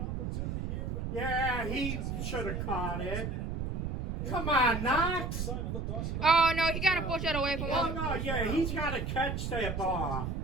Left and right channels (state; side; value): noise; right; rumble, 3 dB below the sound